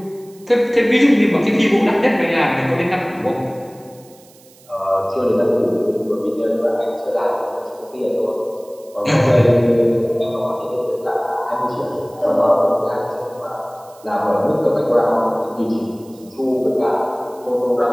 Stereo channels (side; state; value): right; noise; hiss, 27 dB below the sound